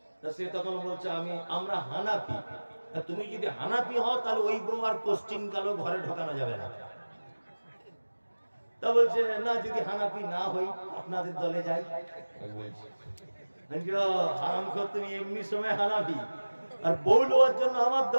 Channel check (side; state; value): both; inverted; correlation -1.00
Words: তা সে তখন বলছে আমরা হানাফি। তুমি যদি হানাফি হও তাহলে ওই বউ আর কোশ্চিন কালো ঘরে ঢোকানো যাবে না। তা বলছে না, যদি হানাফি না হই আপনাদের দলে যাই। বলছি হারামখোর, তুমি এমনি সময় হানাফি আর বউ লোয়ার জন্য আমার